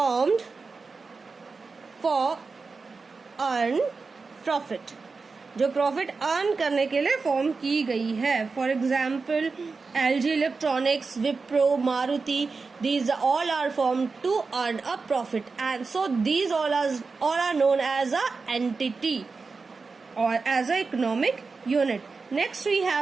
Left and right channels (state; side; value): quieter; left; 4.4 dB